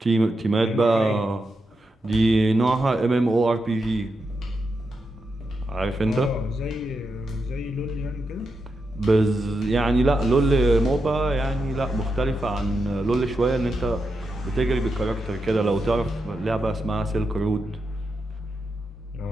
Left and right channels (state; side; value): normal; both; correlation 0.86